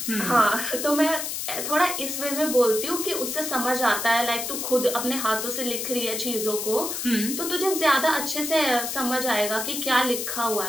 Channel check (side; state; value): left; noise; hiss, 4 dB below the sound